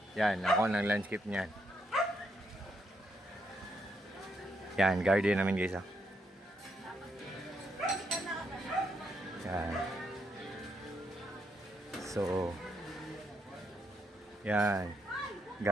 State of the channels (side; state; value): both; normal; correlation 0.77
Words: Yan, ako ang nag-landscape niyan. Yan, garden namin guys, oh. Yan. So, yan.